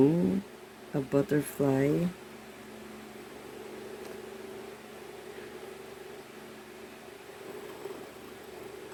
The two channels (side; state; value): both; identical; correlation 1.00